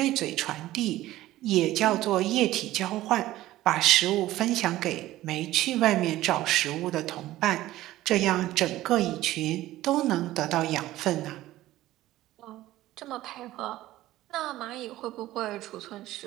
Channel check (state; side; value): quieter; left; 15.6 dB